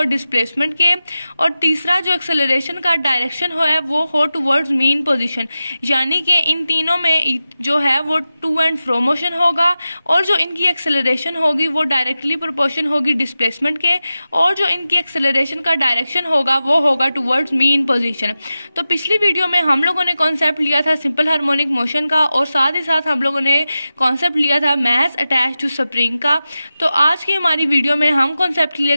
डिस्प्लेसमेंट के, और तीसरा जो एक्सेलरेशन का डायरेक्शन हो है वो हो टूवर्ड्स मीन पोजीशन। यानी कि इन तीनों में जो है वो टू एंड फ्रो मोशन होगा, और जो इनकी एक्सेलरेशन होगी वो डायरेक्टली प्रोपोर्शन होगी डिस्प्लेसमेंट के, और जो इनकी एक्सेलरेशन का डायरेक्शन होगा वो होगा टुवर्ड्स मीन पोजीशन। तो पिछली वीडियो में हम लोगों ने कॉन्सेप्ट लिया था सिंपल हार्मोनिक मोशन का, और साथ ही साथ हम लोगों ने कॉन्सेप्ट लिया था मैस अटैच टू स्प्रिंग का। तो आज की हमारी वीडियो में हम कॉन्सेप्ट क्लियर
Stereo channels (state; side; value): inverted; both; correlation -0.94